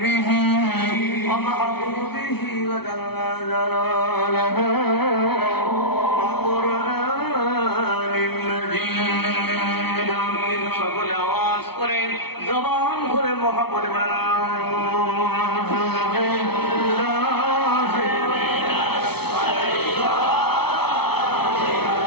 ومحبوبه وجل جلاله وقرآن مجيد সকলে আওয়াজ করে জবান খুলে মহব্বত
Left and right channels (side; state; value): right; late; 0.97 ms